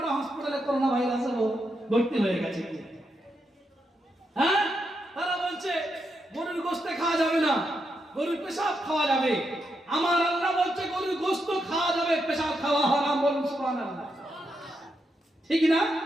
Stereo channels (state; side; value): normal; both; correlation 0.83